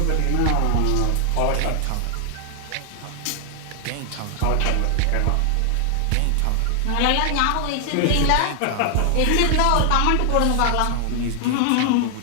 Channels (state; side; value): different; both; correlation 0.00